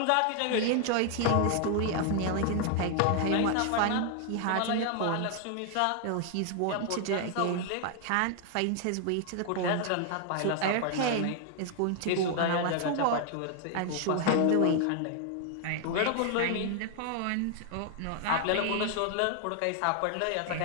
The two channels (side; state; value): both; different; correlation 0.00